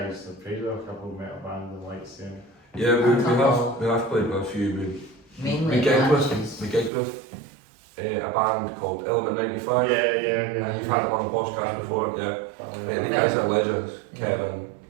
have played with a couple of metal bands and lights there. Yeah, we have played with a few. Mainly We gigged Apaches. with a band called Element 95. Yeah. You've had them on the podcast before, yeah. The guys are legends, Kevin,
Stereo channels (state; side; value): drops out; left; at 6.9 s